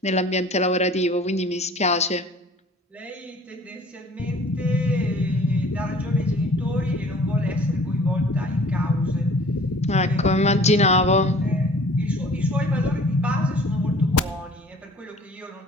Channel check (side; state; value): both; normal; correlation 0.50